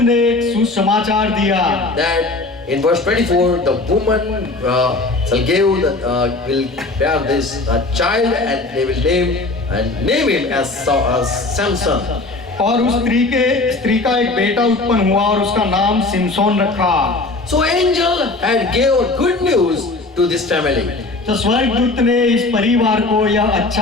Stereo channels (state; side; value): quieter; right; 3.2 dB